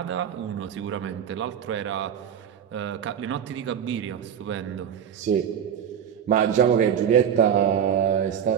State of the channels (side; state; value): left; quieter; 8.6 dB